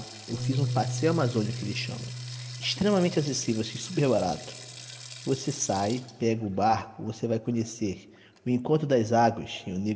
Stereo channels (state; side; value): identical; both; correlation 1.00